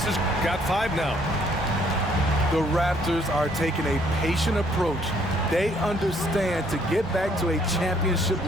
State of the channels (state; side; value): normal; both; correlation 0.65